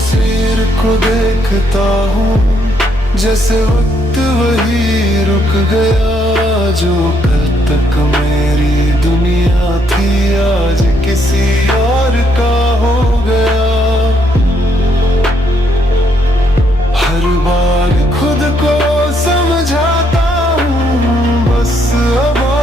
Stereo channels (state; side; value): normal; both; correlation 0.73